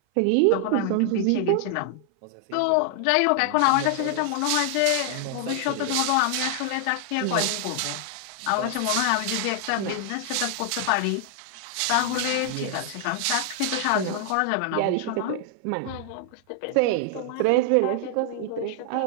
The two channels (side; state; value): both; different; correlation 0.00